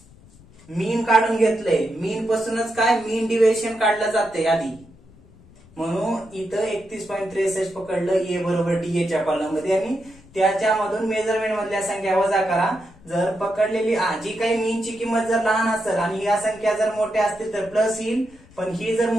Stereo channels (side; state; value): left; noise; rumble, 25 dB below the sound